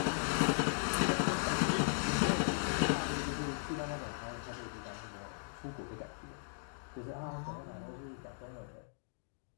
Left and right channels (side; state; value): right; silent; digital silence